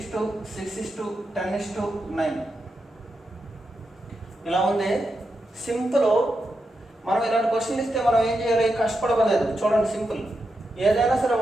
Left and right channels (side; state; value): both; normal; correlation 0.86